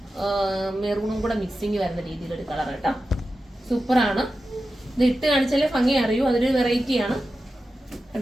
മെറൂണും കൂടെ മിക്സിങ് വരുന്ന രീതിയിലൊരു കളർ കേട്ടോ. സൂപ്പറാണ്. ഇത് ഇട്ട് കാണിച്ചാലേ ഭംഗി അറിയൂ. അതൊരു വെറൈറ്റി ആണ്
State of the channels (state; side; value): normal; both; correlation 0.92